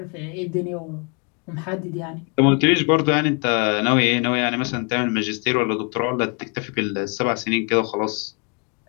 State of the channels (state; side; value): quieter; right; 34.9 dB